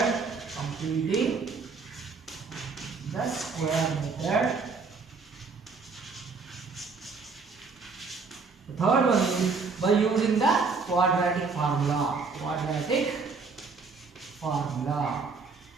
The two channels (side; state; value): left; quieter; 4.6 dB